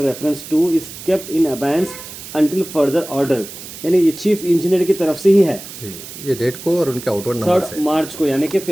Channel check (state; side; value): noise; right; hiss, 13 dB below the sound